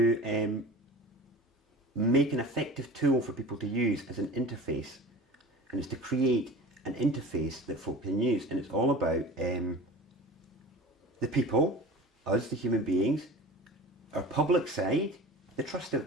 make an effective tool for people to use as an interface. And it's to create an interface that folk can use. And it's all about the people, us, the human beings, our public side, the trust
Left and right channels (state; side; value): normal; both; correlation 0.37